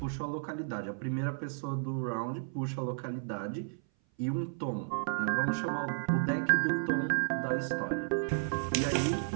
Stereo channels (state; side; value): silent; left; 56 dB below the other